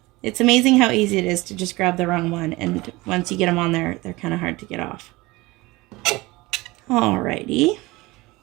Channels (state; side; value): quieter; left; 21.4 dB